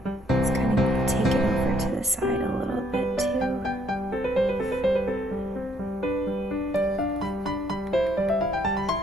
Let's kind of take it over to the side a little bit too.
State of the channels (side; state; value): both; normal; correlation 0.68